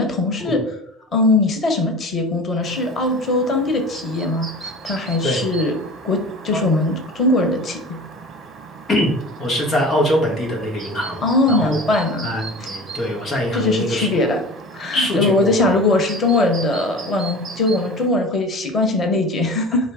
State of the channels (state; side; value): normal; both; correlation 0.36